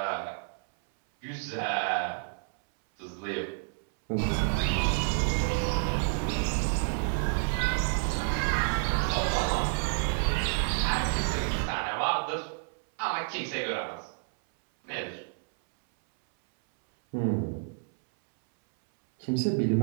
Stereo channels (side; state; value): left; silent; 58 dB below the other